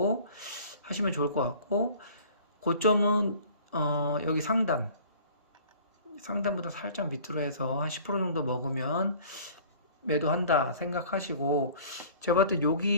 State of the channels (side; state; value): both; inverted; correlation -0.48